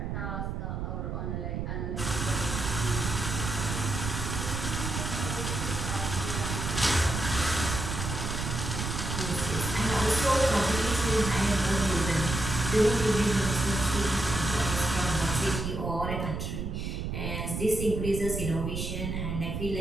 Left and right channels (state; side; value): noise; right; rumble, 3 dB below the sound